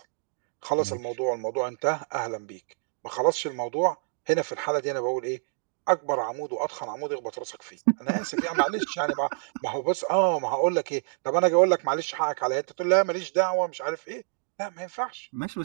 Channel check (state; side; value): silent; left; digital silence